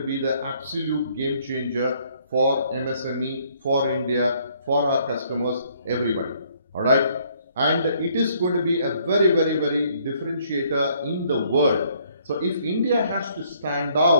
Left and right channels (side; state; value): both; inverted; correlation -0.65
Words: be the absolute game changer for MSME, for India, for our customers, everybody. All right? And it is going to be a very, very, very differentiator in the world. So if India has to stand